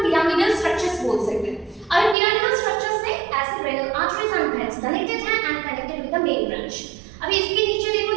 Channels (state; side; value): drops out; left; at 2.1 s